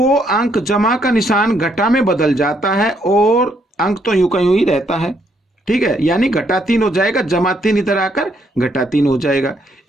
अंक जमा का निशान घटा में बदल जाता है और अंक तो यूं का यूं ही रहता है। ठीक है, यानी घटा 3 हो जाएगा, जमा 3 इधर आकर घटा 3 हो जाएगा।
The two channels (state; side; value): normal; both; correlation 0.72